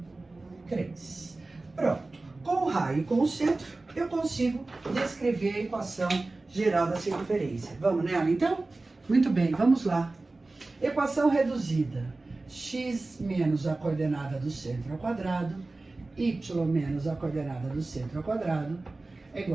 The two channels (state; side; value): quieter; left; 3.2 dB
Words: 3. Pronto. Com o raio e com o centro, eu consigo descrever a equação geral da circunferência. Vamos nela, então? Muito bem, vamos lá. Equação reduzida. X menos a coordenada do centro ao quadrado, y menos a coordenada do centro ao quadrado, é